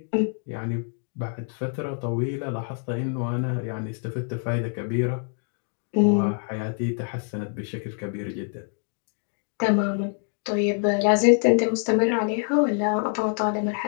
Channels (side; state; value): right; silent; 56 dB below the other